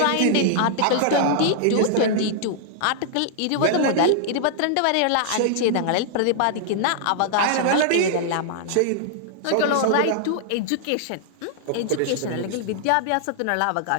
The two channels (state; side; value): different; both; correlation -0.01